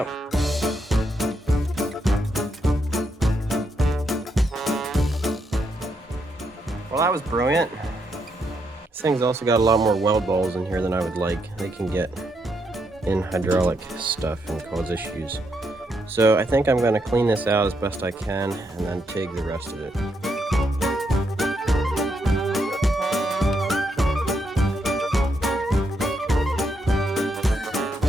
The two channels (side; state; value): both; normal; correlation 0.78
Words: Well, that was brilliant. This thing's also got a lot more weld balls in here than I would like. They can get in hydraulic stuff and cause issues. So I think I'm going to clean this out as best I can and then TIG the rest of it.